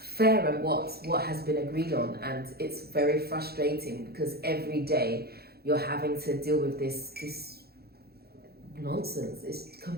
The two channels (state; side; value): late; left; 0.46 ms